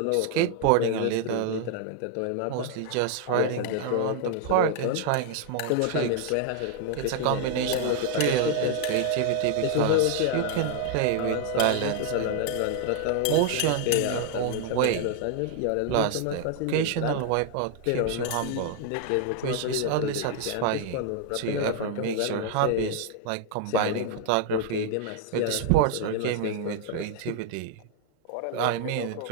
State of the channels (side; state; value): both; different; correlation 0.00